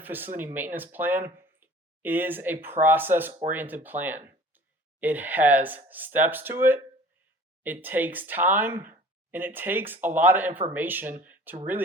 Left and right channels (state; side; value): normal; both; correlation 0.47